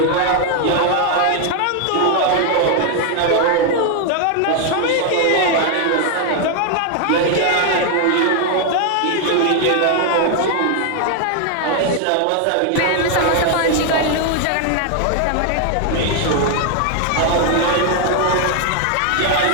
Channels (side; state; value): both; different; correlation 0.00